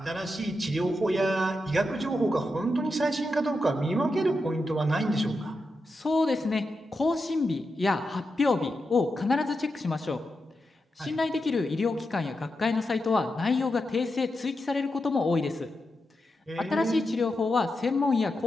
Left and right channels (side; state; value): both; normal; correlation 0.87